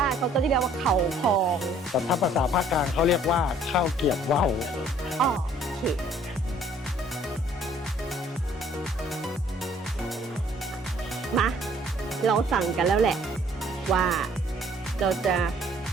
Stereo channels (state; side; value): normal; both; correlation 0.58